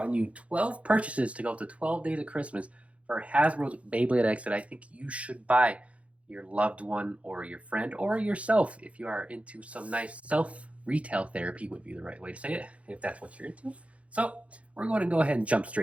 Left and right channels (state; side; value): late; left; 0.063 ms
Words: you 12 purchases to go to 12 days of Christmas for Hasbro's Beyblade X that I think you should buy your loved one or your friend or yourself if you are into some nice self retail therapy would be the right way to say it if that's what you're into. So we're going to go ahead and jump